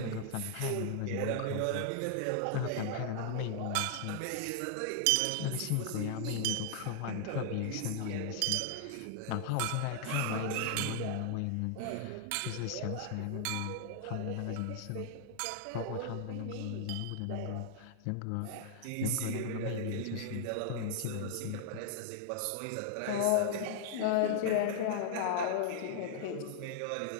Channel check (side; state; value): both; different; correlation -0.01